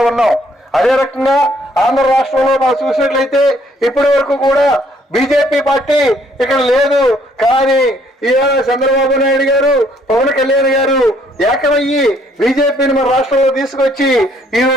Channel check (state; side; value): normal; both; correlation 0.65